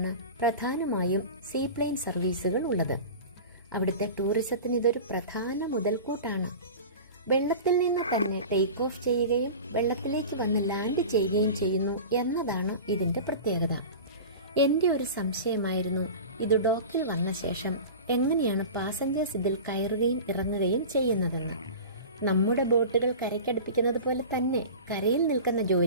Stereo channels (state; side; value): inverted; both; correlation -0.34